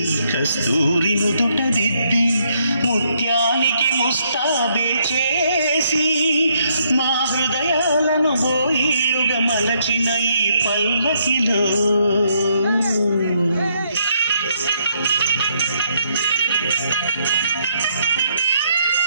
కస్తూరి నుదుట దిద్ది ముత్యానికి ముస్తాబే చేసి మా హృదయాలను బోయిలుగా మలచిన ఈ పల్లకిలో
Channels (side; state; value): both; inverted; correlation -0.73